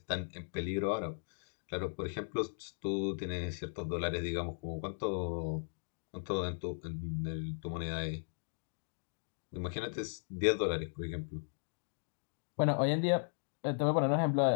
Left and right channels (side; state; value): right; silent; digital silence